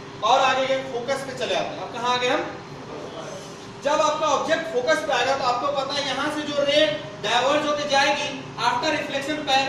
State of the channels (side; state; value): both; identical; correlation 1.00